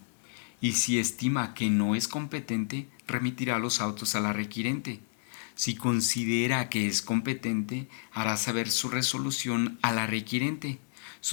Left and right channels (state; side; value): silent; right; digital silence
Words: y si estima que no es competente, remitirá los autos a la requirente. Si considera que es competente, hará saber su resolución a la requirente,